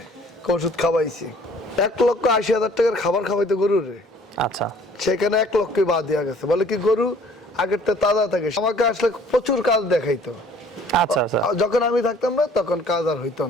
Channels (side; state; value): both; normal; correlation 0.55